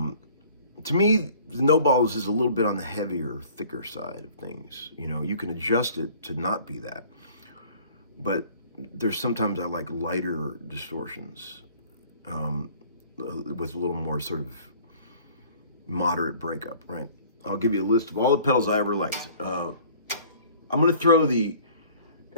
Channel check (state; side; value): inverted; both; correlation -0.51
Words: me, the No Balls is a little bit on the heavier, thicker side of things. You know, you can adjust it to not be that. But there's sometimes I like lighter distortions with a little more sort of moderate breakup, right? I'll give you a list of all the pedals I ever liked. I'm going to throw the